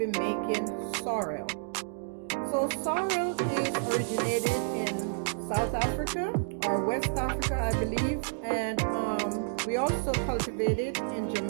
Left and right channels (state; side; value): silent; left; digital silence